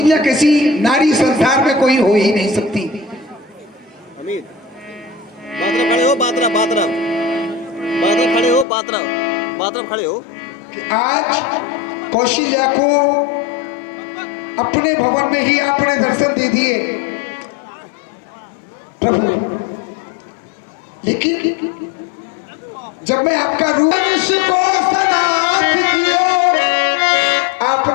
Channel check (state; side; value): drops out; right; at 8.7 s